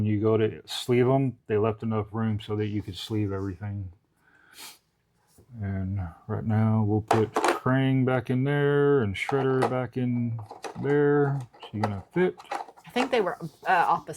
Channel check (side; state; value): both; identical; correlation 1.00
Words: you go to sleeve them, they left enough room so that you could sleeve everything. And right now we'll put Krang back in there and Shredder back in there. She's gonna fit. I think they were